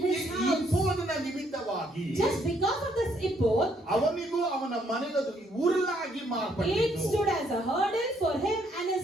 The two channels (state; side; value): normal; both; correlation 0.70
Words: his ಈ house. ಇಪ್ಪೋದನ ನಿಮಿತ್ತವಾಗಿ Just because of this ephod, ಅವನಿಗೂ ಅವನ ಮನೆಗೂ ಉರುಲಾಗಿ it ಮಾರ್ಪಟ್ಟಿತು. stood as a hurdle for him and